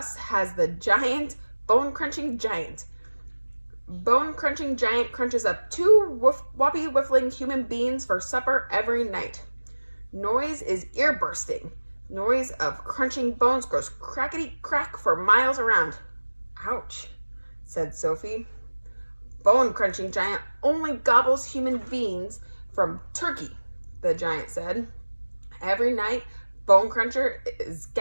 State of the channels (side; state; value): both; inverted; correlation -1.00